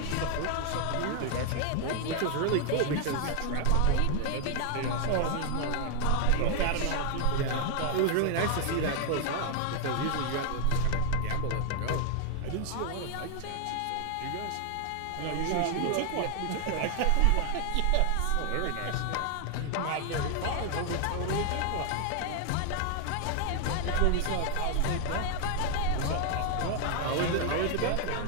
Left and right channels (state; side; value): different; both; correlation 0.00